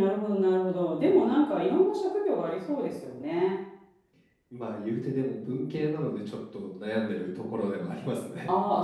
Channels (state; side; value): identical; both; correlation 1.00